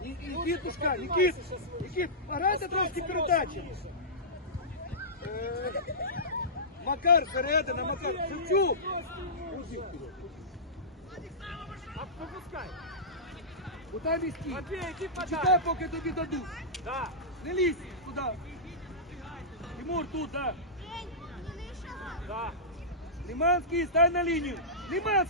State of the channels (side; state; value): both; normal; correlation -0.17